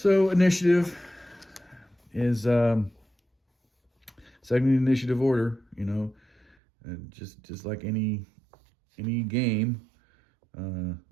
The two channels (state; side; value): drops out; left; at 6.6 s